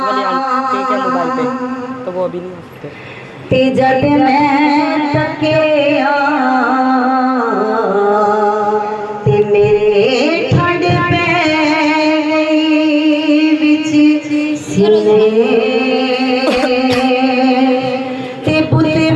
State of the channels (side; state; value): both; identical; correlation 1.00